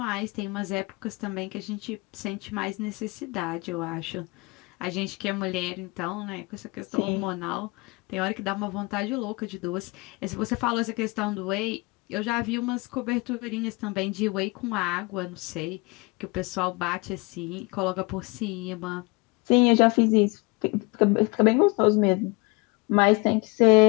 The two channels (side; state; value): right; quieter; 26.3 dB